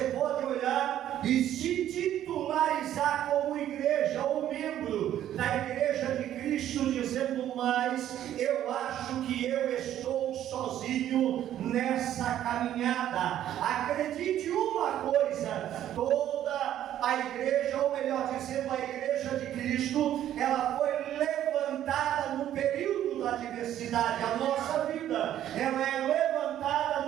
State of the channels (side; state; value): left; quieter; 11.6 dB